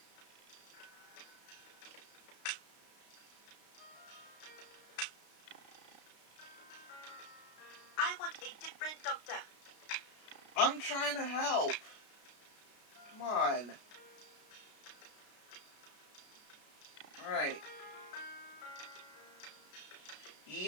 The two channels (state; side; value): late; right; 33 ms